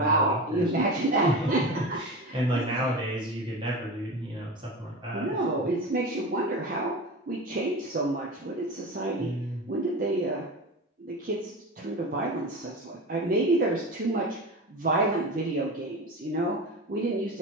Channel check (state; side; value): normal; both; correlation 0.27